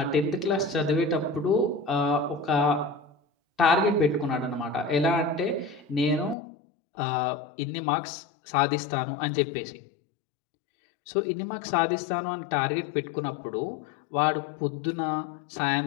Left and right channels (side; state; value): right; drops out; at 6.4 s